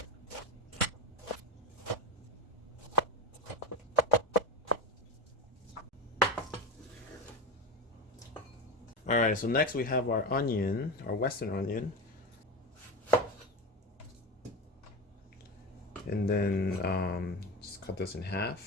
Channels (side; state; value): both; normal; correlation 0.22